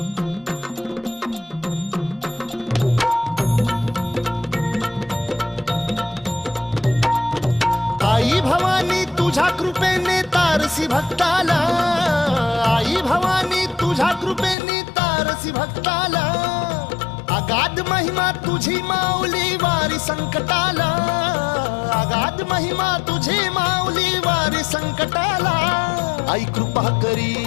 आई भवानी तुझ्या कृपेने तारसी भक्ताला, आई भवानी तुझ्या कृपेने तारसी भक्ताला. अगाध महिमा तुझी माऊली वारी संकटाला, अगाध महिमा तुझी माऊली वारी संकटाला. आई कृपा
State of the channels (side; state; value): right; drops out; at 14.6 s